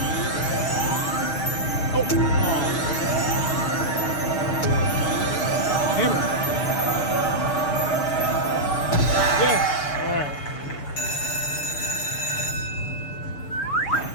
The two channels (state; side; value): late; right; 6.9 ms